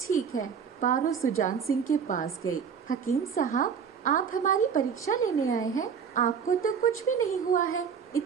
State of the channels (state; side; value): quieter; left; 6.9 dB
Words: है। पारो सुजान सिंह के पास गई। हकीम साहब, आप हमारी परीक्षा लेने आए हैं? आपको तो कुछ भी नहीं हुआ है।